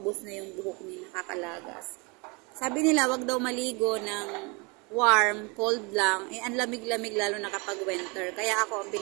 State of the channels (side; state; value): left; quieter; 29.3 dB